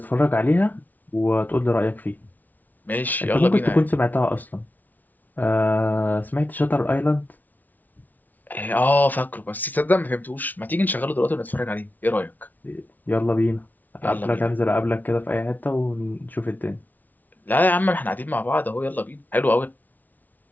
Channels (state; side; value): late; right; 0.080 ms